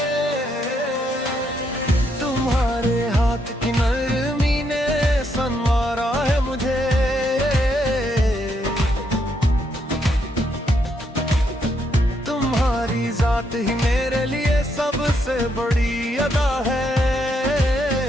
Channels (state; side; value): normal; both; correlation 0.76